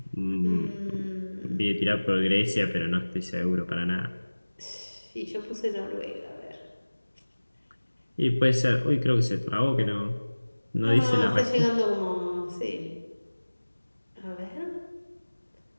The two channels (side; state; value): both; inverted; correlation -1.00